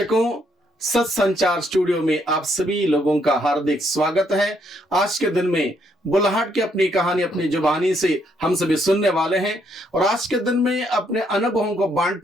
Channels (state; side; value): normal; both; correlation 0.72